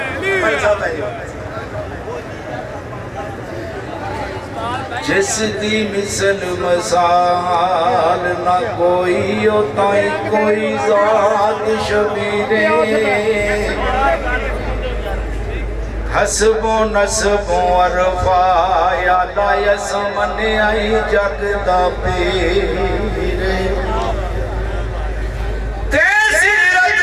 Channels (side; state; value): both; identical; correlation 1.00